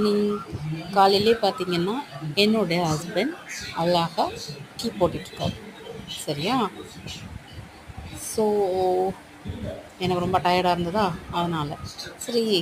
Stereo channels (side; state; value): both; identical; correlation 1.00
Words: காலையிலே பார்த்தீங்கன்னா என்னுடைய ஹஸ்பண்ட் அழகாக டீ போட்டுட்ருக்காரு. சரியா? ஸோ எனக்கு ரொம்ப டயர்டாக இருந்ததா, அதனால் சரி